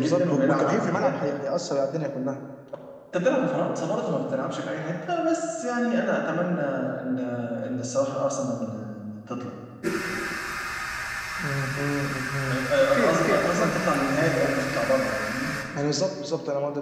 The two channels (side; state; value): both; identical; correlation 1.00